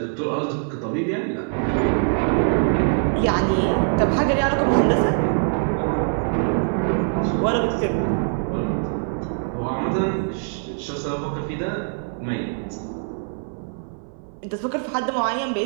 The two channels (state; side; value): silent; left; 63 dB below the other